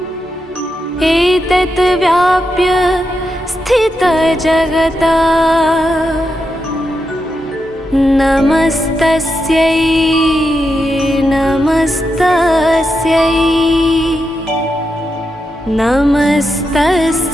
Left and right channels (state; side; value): normal; both; correlation 0.86